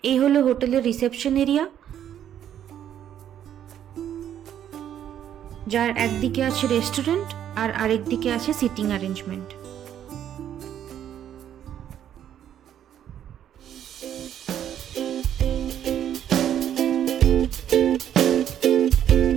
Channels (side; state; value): left; quieter; 10.2 dB